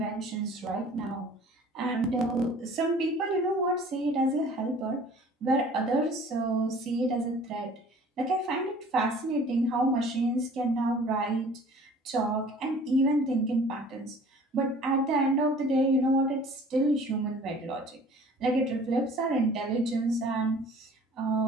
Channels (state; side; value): normal; both; correlation 0.49